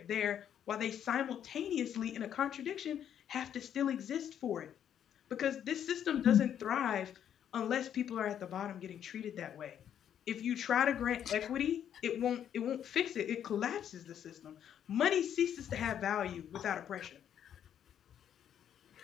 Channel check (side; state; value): right; quieter; 9.5 dB